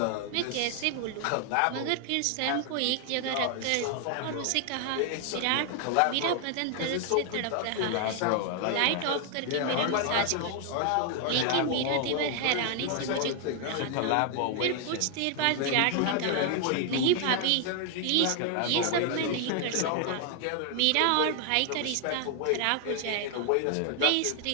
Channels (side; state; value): both; different; correlation 0.00